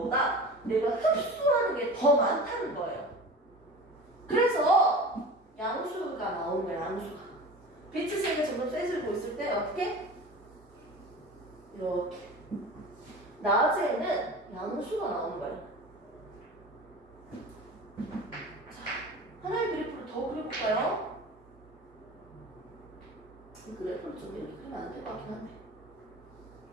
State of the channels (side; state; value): both; normal; correlation 0.35